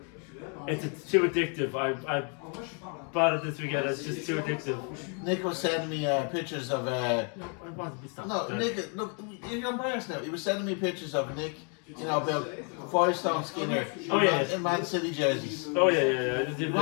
it's too addictive. I bought it this weekend. It's just too addictive. Nick was sending me pictures of. I want to be stopped. No, Nick, look, you're embarrassed now. He was sending me pictures of Nick, you know, about 5-stone Skinner in Man City jerseys. Oh yeah. We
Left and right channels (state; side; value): quieter; right; 38.9 dB